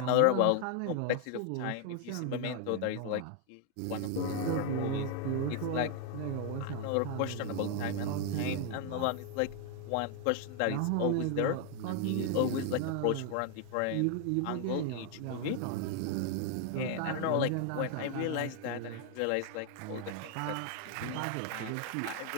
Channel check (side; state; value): both; different; correlation 0.01